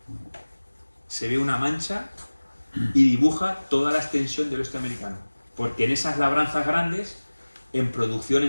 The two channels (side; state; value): both; inverted; correlation -1.00